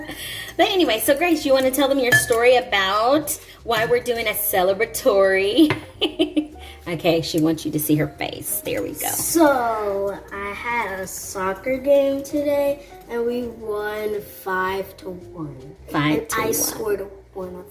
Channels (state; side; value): identical; both; correlation 1.00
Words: But anyway, so Grace, you want to tell them your story about why we're doing a celebratory? Okay, she wants you to see her face. There we go. So I had a soccer game today, and we won 5-1. 5-1. I scored one